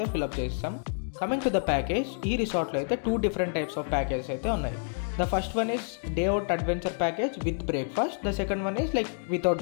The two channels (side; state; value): right; silent; digital silence